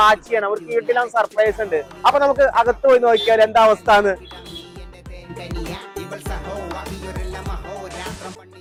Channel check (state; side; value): identical; both; correlation 1.00